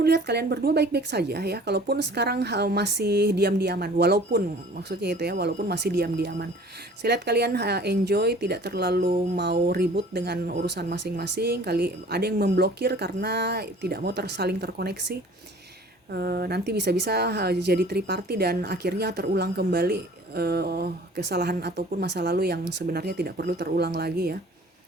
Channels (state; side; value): normal; both; correlation 0.49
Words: lihat kalian berdua baik-baik saja ya, kalaupun sekarang masih diam-diaman, walaupun maksudnya itu ya, walaupun masih diam-diaman. Saya lihat kalian enjoy, tidak terlalu mau ribut dengan urusan masing-masing. Kali ada yang memblokir karena tidak mau saling terkoneksi. Nanti bisa-bisa jadi triparty dan akhirnya terulang kembali kesalahan ataupun masa lalu yang sebenarnya tidak perlu terulang lagi ya.